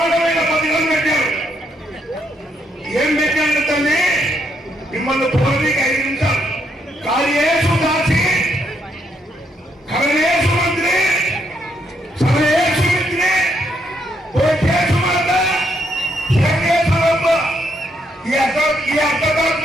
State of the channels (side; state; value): both; normal; correlation 0.75